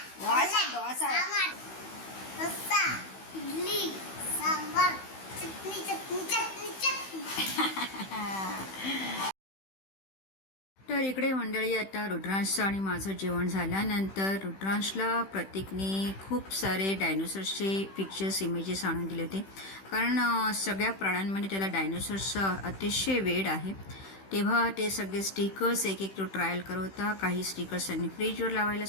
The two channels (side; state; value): right; late; 15 ms